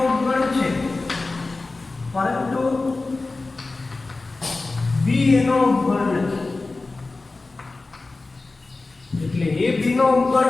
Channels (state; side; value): quieter; right; 3.5 dB